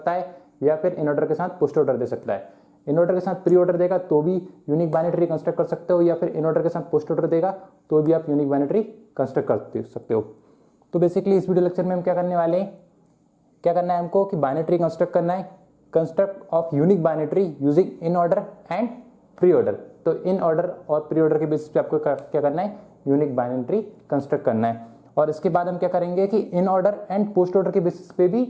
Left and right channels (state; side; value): identical; both; correlation 1.00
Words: है या फिर इन ऑर्डर के साथ पोस्ट ऑर्डर दे सकता है। इन ऑर्डर के साथ प्री ऑर्डर देगा तो भी यूनिक बाइनरी ट्री कंस्ट्रक्ट कर सकते हो, या फिर इन ऑर्डर के साथ पोस्ट ऑर्डर देगा तो भी आप यूनिक बाइनरी ट्री कंस्ट्रक्ट कर सकते हो। तो बेसिकली इस वीडियो लेक्चर में हम क्या करने वाले हैं, क्या करना है हमको कि बाइनरी ट्री कंस्ट्रक्ट करना है, construct of unique binary tree using in order and pre order. तो इन ऑर्डर और प्री ऑर्डर के बेसिस पे आपको क्या करना है, यूनिक बाइनरी ट्री कंस्ट्रक्ट करना है। और इसके बाद हम क्या करेंगे कि इन ऑर्डर एंड पोस्ट ऑर्डर के बेसिस पे भी